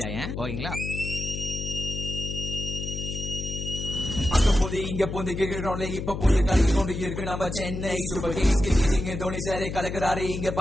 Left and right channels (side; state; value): left; noise; hum, 5 dB below the sound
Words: ஓகேங்களா? இங்க பொந்து கேட்கிறோம்ல இப்ப பொந்து கலக்கி கொண்டு இருக்கு நம்ம Chennai super Kings cricketing Dhoni சாரே கலக்குறாரு இங்க